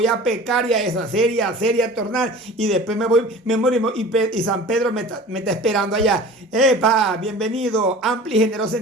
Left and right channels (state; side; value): normal; both; correlation 0.40